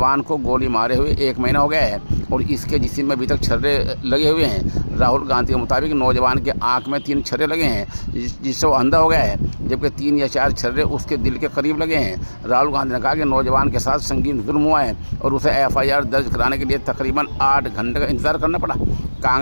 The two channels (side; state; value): both; inverted; correlation -1.00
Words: को गोली मारे हुए 1 महीना हो गया है और इसके जिस्म में अभी तक छर्रे लगे हुए हैं। राहुल गांधी के मुताबिक नौजवान के आंख में 3 छर्रे लगे हैं जिससे वो अंधा हो गया है, जबकि 3 या 4 छर्रे उसके दिल के करीब लगे हैं। राहुल गांधी ने कहा कि नौजवान के साथ संगीन जुल्म हुआ है और उसे एफआईआर दर्ज कराने के लिए तकरीबन 8 घंटे का इंतजार करना पड़ा।